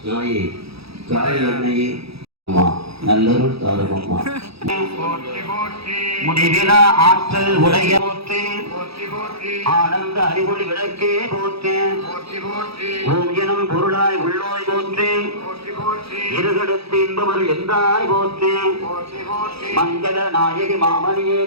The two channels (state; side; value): late; left; 0.77 ms